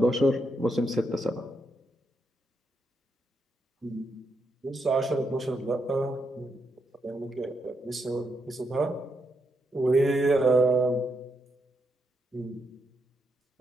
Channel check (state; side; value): normal; both; correlation 0.81